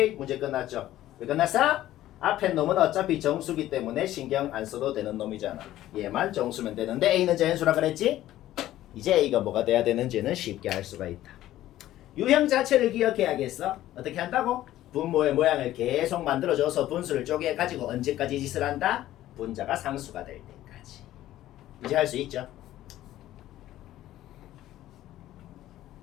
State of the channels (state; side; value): quieter; right; 14.0 dB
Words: 문제 끝났죠? 왜 끝났어? 앞에 놈은 어차피 정수기 때문에 신경 안 써도 되는 놈이잖아. 얘만 정수면 되는데 a는 자연수라 그랬지? 이제 a가 뭐가 돼야 되는지는 쉽게 알 수가 있다. 유형 자체를 기억해야겠어. 어떻게 한다고? 분모의 모양을 계속 만들어줘서 분수를 쪼개가지고 언제까지 짓을 한다? 분자가 상수가 될 때까지. 이제 할 수 있죠?